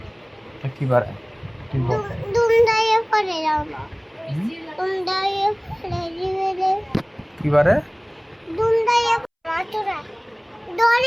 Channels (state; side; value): identical; both; correlation 1.00